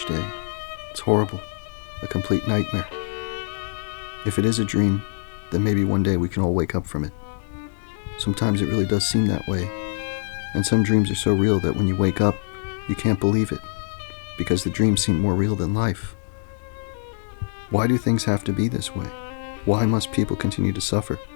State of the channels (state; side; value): silent; right; digital silence